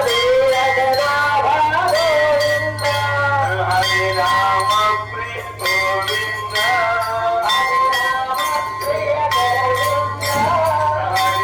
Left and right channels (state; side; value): identical; both; correlation 1.00